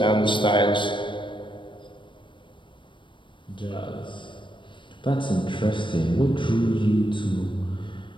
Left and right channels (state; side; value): late; right; 0.24 ms